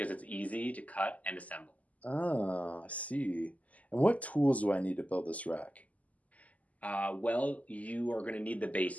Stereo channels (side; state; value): right; late; 0.073 ms